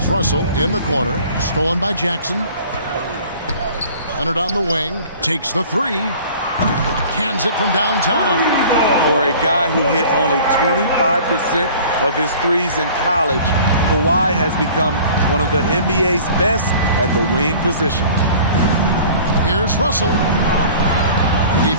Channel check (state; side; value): inverted; both; correlation -0.46